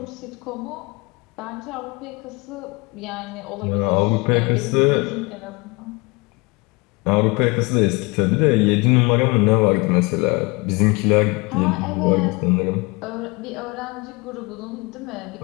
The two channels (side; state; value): right; quieter; 26.7 dB